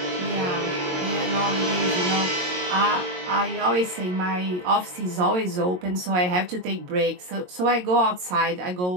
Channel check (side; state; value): left; late; 22 ms